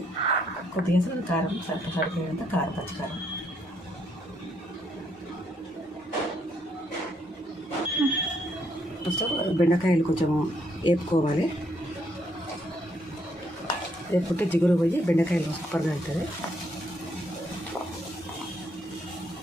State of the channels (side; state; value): both; normal; correlation 0.72